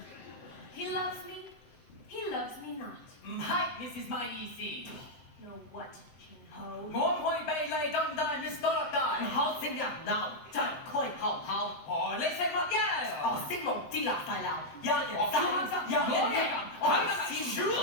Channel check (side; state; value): right; late; 7.7 ms